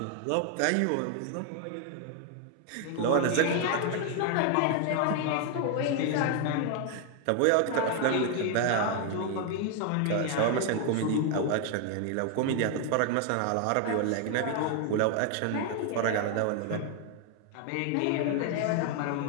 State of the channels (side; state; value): both; different; correlation 0.00